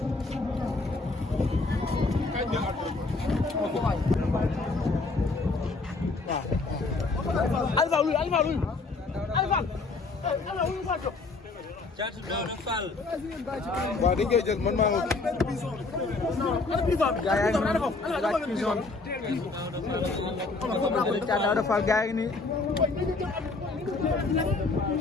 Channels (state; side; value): quieter; right; 3.7 dB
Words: Alpha luy Thiat Daouda Fall waaw dañ koy jël man maa ngi gaa yaa ngi noonu laaj prison bi Thiat Daouda Fall gaa yi nii